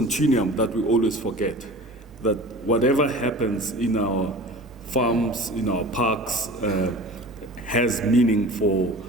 that we always forget, that whatever happens in our farms, in our parks, has meaning for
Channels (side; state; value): both; normal; correlation 0.39